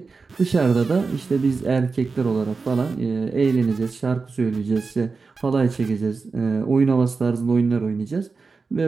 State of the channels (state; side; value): quieter; left; 4.5 dB